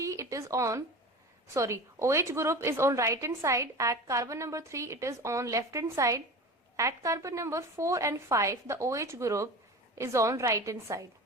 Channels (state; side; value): normal; both; correlation 0.33